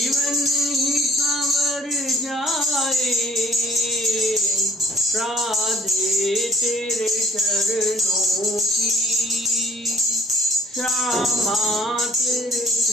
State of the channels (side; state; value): both; normal; correlation 0.56